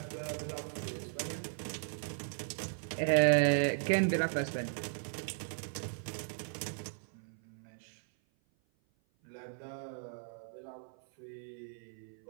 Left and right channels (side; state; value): left; silent; 53 dB below the other